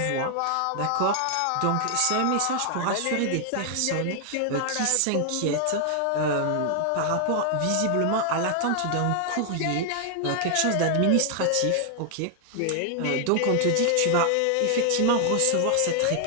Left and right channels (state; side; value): different; both; correlation 0.00